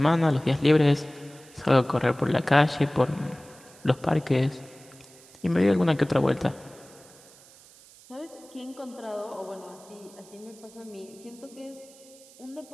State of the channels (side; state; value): right; noise; hiss, 23 dB below the sound